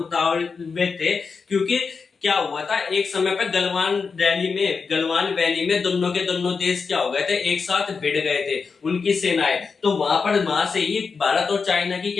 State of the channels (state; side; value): quieter; right; 5.1 dB